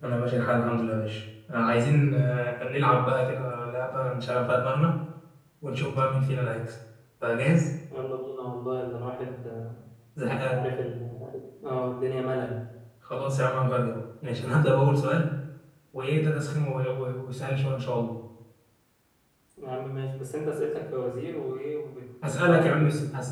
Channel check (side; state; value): both; identical; correlation 1.00